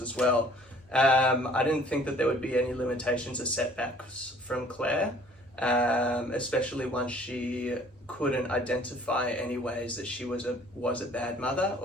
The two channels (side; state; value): both; normal; correlation 0.54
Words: well. I didn't think that there would be any limitations or setbacks from Claire, especially once she couldn't identify any ways that she was a bad mother